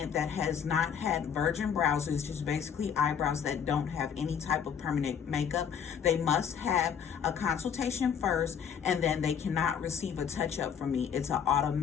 that has not had virgin brows, is just basically eyebrows that don't have any type of permanent makeup, they must have a consultation first, and then they cannot receive a touch-up from me. It's an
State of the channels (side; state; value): right; quieter; 7.7 dB